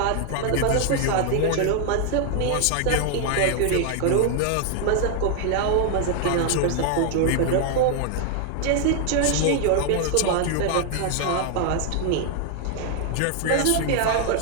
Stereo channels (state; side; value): different; both; correlation 0.00